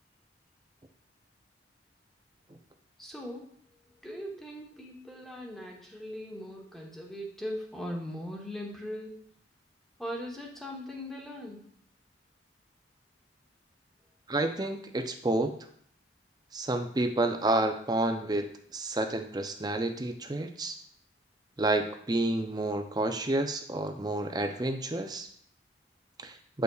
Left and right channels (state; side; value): normal; both; correlation 0.57